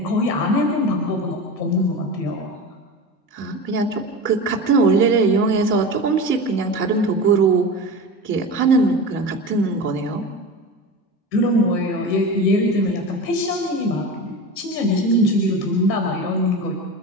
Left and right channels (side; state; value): both; normal; correlation 0.27